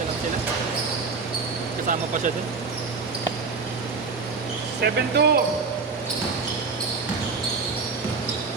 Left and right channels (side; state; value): left; quieter; 4.7 dB